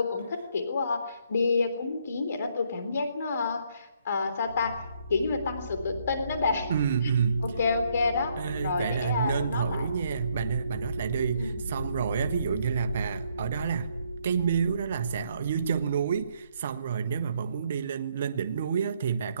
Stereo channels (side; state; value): both; inverted; correlation -0.71